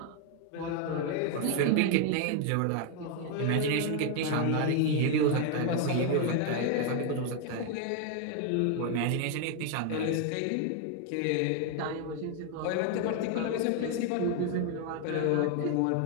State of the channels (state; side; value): different; both; correlation 0.00